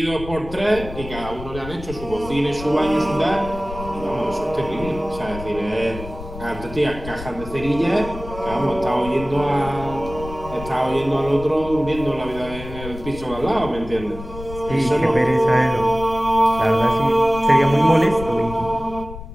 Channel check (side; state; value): left; noise; rumble, 12 dB below the sound